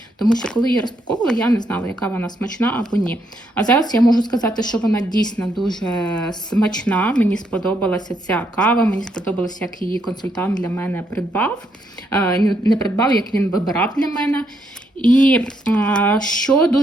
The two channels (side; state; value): both; normal; correlation 0.76